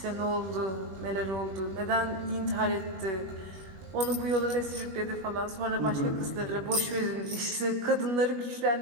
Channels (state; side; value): late; left; 21 ms